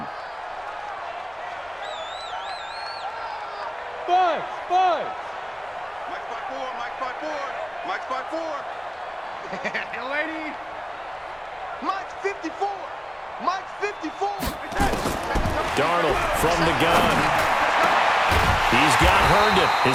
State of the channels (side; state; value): both; identical; correlation 1.00